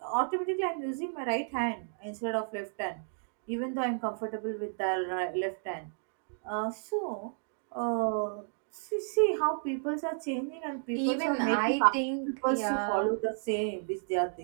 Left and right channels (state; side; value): silent; left; digital silence